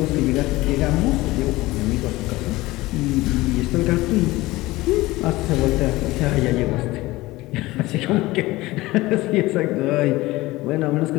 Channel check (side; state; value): right; quieter; 19.3 dB